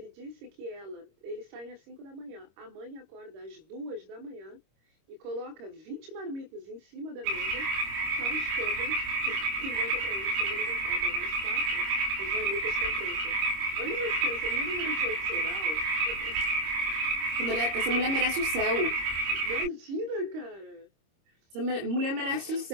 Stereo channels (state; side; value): late; left; 26 ms